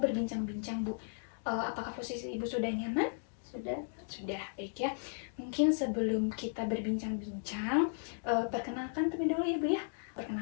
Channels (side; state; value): right; silent; digital silence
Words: Bu, apakah posisi Ibu sudah nyaman? Sudah. Sudah, baik ya. Mungkin sebelum kita berbincang-bincang, perkenalkan terlebih dahulu ya Bu ya.